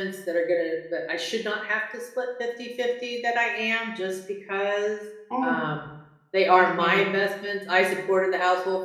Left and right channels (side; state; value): both; identical; correlation 1.00